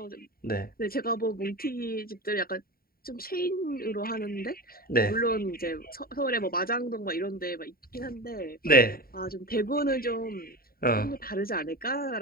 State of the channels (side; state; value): right; late; 0.43 ms